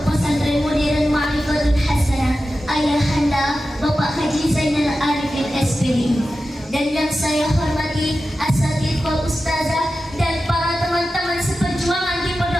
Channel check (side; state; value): both; normal; correlation 0.92